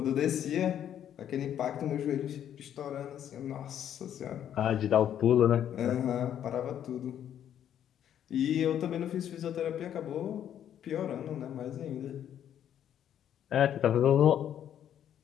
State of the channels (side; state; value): right; quieter; 10.1 dB